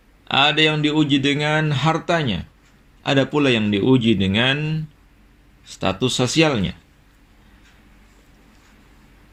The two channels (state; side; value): identical; both; correlation 1.00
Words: Ada yang diuji dengan hartanya. Ada pula yang diuji dengan status sosialnya.